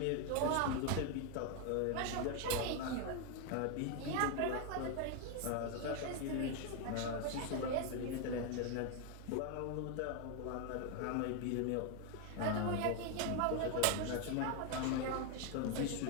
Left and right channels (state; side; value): different; both; correlation 0.01